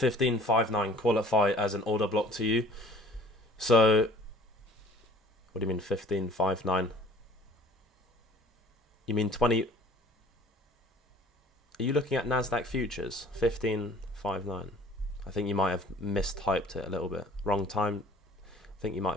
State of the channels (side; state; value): both; normal; correlation 0.51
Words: qualify as an order block to you. So, what do you mean 15.59? You mean 20... Are you looking at Nasdaq futures? 15.59. I think you might have mistyped it a little bit. Wrong time. I think you